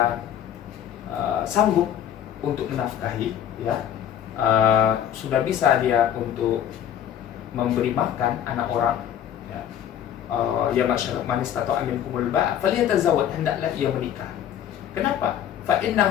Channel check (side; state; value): right; quieter; 10.1 dB